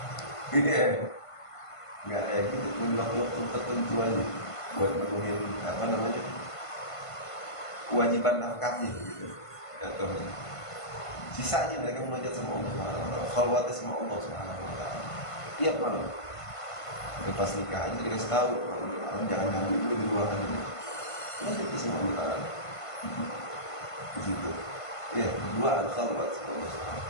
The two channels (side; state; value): right; late; 1.5 ms